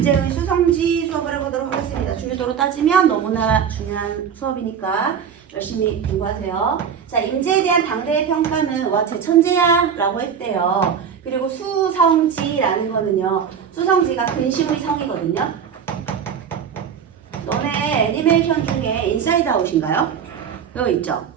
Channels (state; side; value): quieter; left; 7.5 dB